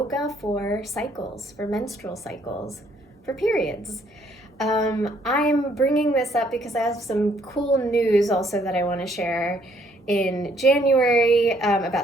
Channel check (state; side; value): normal; both; correlation 0.66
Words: for cycles, for menstrual cycles, for periods. I'm bringing this up because I have some cool news also that I want to share in January